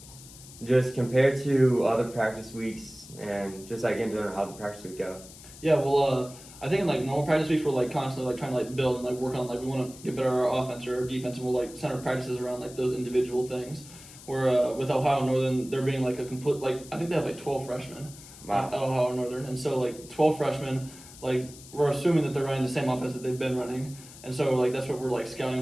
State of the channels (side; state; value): left; noise; hiss, 18 dB below the sound